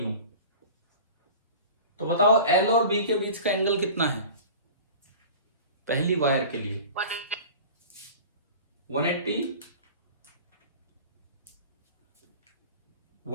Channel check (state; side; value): inverted; both; correlation -0.38